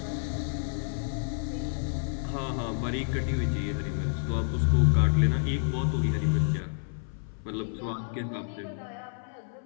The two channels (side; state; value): right; silent; 57 dB below the other